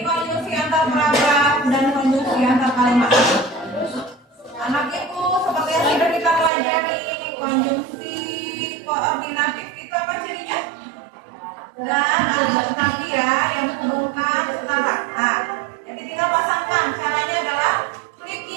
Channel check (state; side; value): drops out; left; at 6.5 s